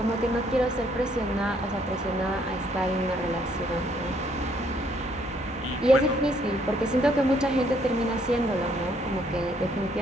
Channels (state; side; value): normal; both; correlation 0.67